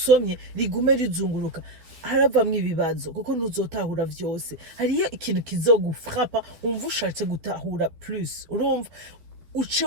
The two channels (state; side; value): late; left; 11 ms